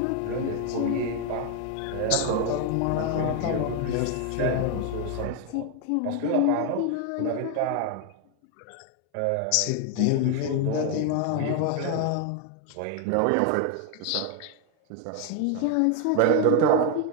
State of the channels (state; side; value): different; both; correlation 0.01